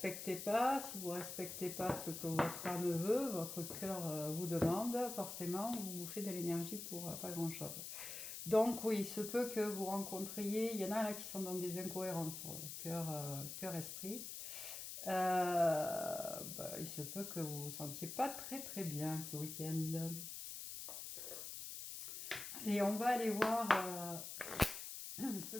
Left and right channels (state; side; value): noise; left; hiss, 7 dB below the sound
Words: pas, si vous ne respectez pas ce que votre âme veut, votre cœur vous demande, forcément, vous vous faites de l'énergie pour pas grand-chose. Donc oui, il se peut que vous rencontriez, il y en a là qui sont dans des incohérences, cœur-esprit. Il se peut que vous vous sentiez pas très très bien ce week-end. Et on va aller voir ce